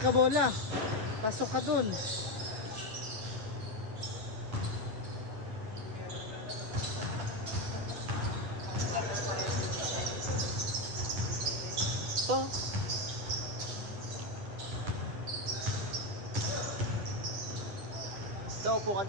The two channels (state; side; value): late; left; 9.5 ms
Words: bola? Pasok ka dun. To. Ito, upo ka